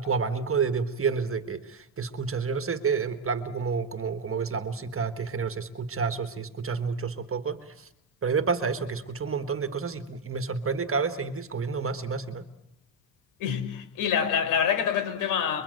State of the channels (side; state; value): both; normal; correlation 0.02